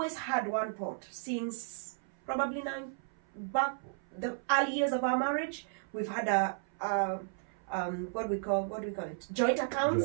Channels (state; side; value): silent; left; 55 dB below the other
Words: had one pot since probably the early years of our marriage. We've had what do we call it? Joint